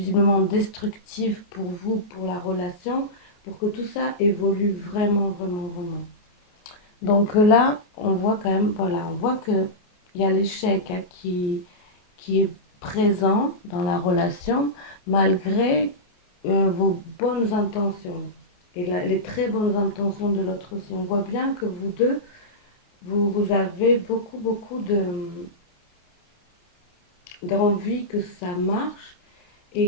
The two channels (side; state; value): right; late; 28 ms